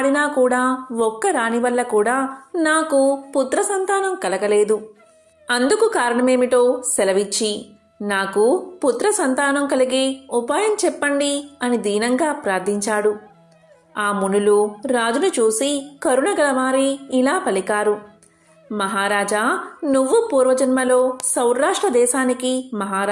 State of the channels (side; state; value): both; identical; correlation 1.00